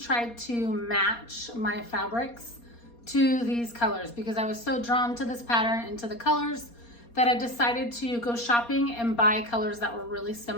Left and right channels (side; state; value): right; late; 4.3 ms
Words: to match my fabrics to these colors because I was so drawn to this pattern and to the colors that I decided to go shopping and buy colors that were really